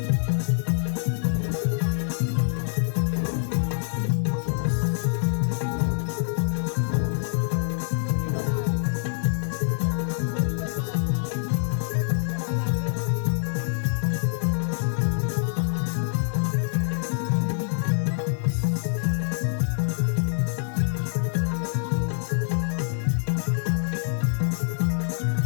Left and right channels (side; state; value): right; silent; digital silence